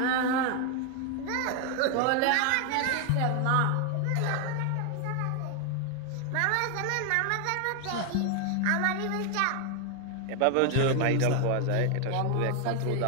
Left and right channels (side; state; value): both; different; correlation 0.01